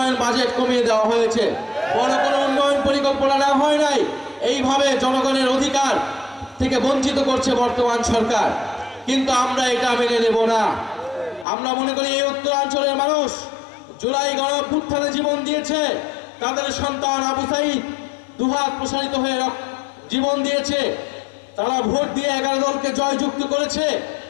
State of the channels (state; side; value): drops out; right; at 11.5 s